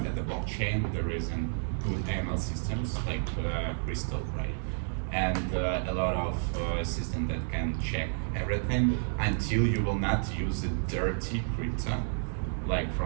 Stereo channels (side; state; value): left; silent; 57 dB below the other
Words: at the blockchain. There is a good ML systems like Crystal, right? And a lot of systems that can check everything until you will not use a dirty crypto, like